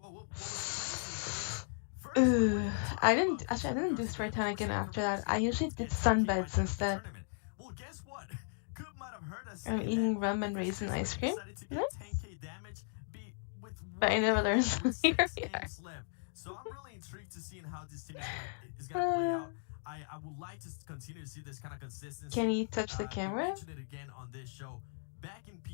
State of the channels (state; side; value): silent; right; digital silence